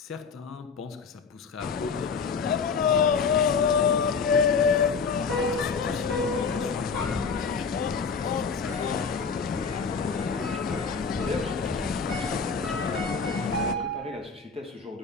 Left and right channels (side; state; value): right; quieter; 5.3 dB